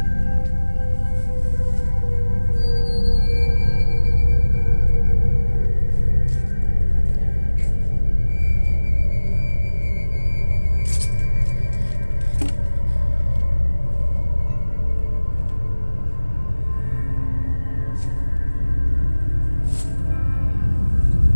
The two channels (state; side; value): inverted; both; correlation -1.00